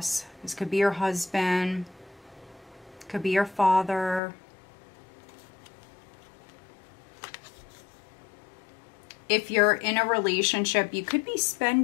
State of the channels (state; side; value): drops out; right; at 4.2 s